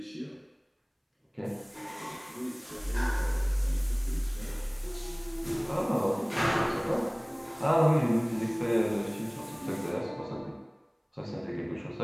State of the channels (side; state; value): both; identical; correlation 1.00